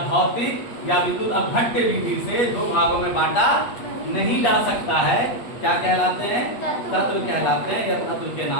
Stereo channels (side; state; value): right; late; 8.4 ms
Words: भौतिक या विद्युत अपघट्य विधि से 2 भागों में बांटा नहीं जा सकता है, क्या कहलाते हैं, तत्व कहलाते हैं, या तत्व के